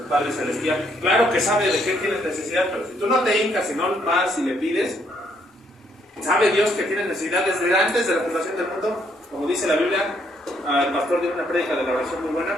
Padre Celestial. Claro que sabe de qué tienes necesidad, pero si tú no te hincas, si no vas y le pides, sabe Dios que tienes necesidad desde antes de la fundación del mundo. Como dice la Biblia, el pastor dio una prédica de la oración muy buena.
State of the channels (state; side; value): normal; both; correlation 0.71